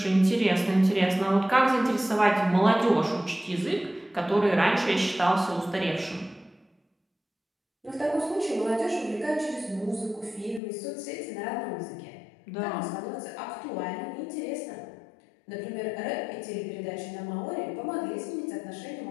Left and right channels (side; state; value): right; drops out; at 10.6 s